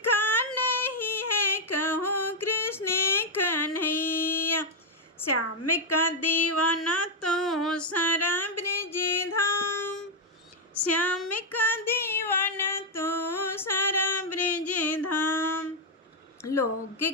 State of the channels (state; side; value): normal; both; correlation -0.01